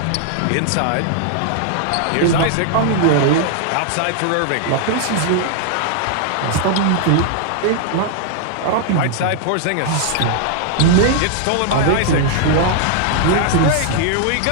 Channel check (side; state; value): both; different; correlation -0.01